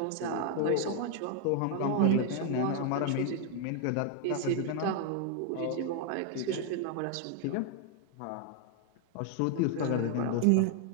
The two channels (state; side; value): different; both; correlation 0.00